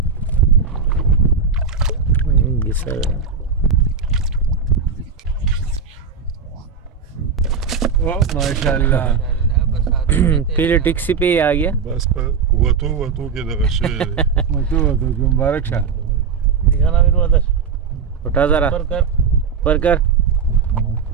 घिसर माशाल्लाह पहले टैक्सी पे ही आ गया बस पर वतो के दगशे मतो मुबारक शाह दिखाना मेरे वादर उठा जरा पर कर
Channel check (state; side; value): quieter; left; 5.9 dB